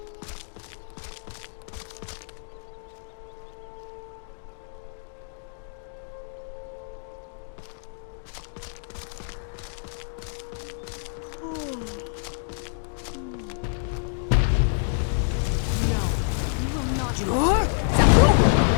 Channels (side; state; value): right; silent; digital silence